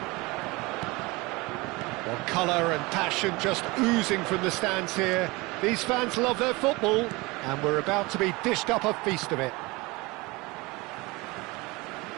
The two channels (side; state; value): left; quieter; 23.8 dB